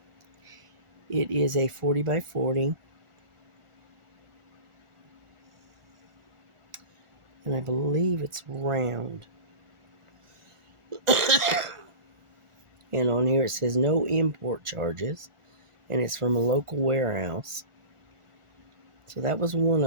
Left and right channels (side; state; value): left; late; 1.4 ms